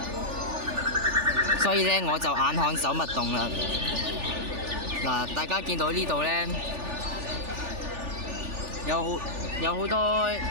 所以呢我就眼看手勿動啦。嗱，大家見到呢度呢，有好多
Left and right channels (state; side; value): late; left; 3.4 ms